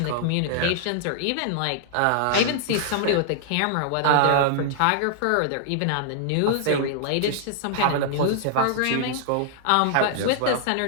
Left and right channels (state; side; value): different; both; correlation -0.01